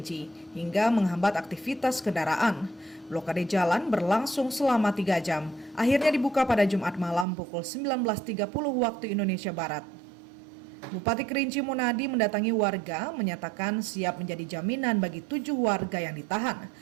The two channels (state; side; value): drops out; left; at 7.2 s